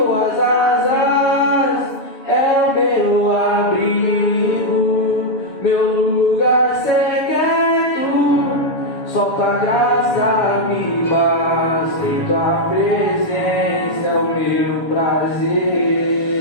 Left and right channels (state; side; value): late; right; 6.9 ms